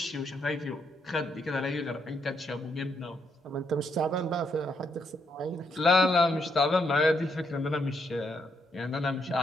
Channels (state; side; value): normal; both; correlation 0.76